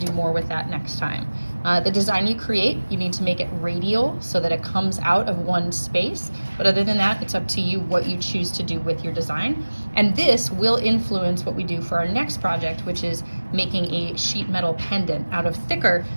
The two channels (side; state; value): both; inverted; correlation -1.00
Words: do more with that next time. The design you create, you need to make it radial so that it comes out of one space. But other than that, it's up to you what you choose to do with your design. And this will influence what we do for our next project, which is making a sheet metal pendant out of thicker